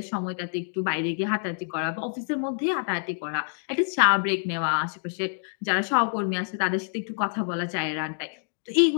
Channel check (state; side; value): silent; right; digital silence